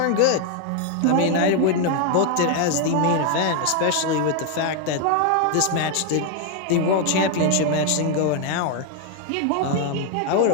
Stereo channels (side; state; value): both; different; correlation 0.01